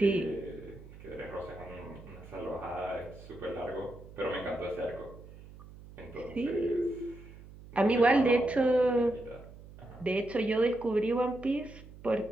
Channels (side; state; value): right; noise; hum, 18 dB below the sound